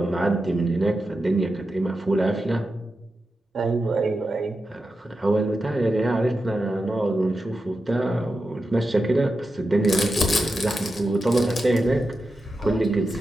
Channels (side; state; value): both; normal; correlation 0.90